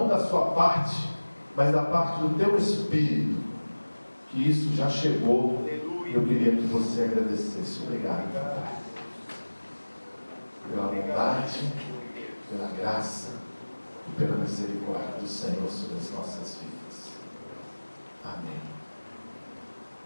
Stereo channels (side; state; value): both; inverted; correlation -1.00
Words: da sua parte, mas da parte do teu espírito, que isso já chegou. Eu queria que você agradecesse. Obrigado, Pai, pela bondade, pela graça e pela misericórdia do Senhor sobre as nossas vidas. Amém.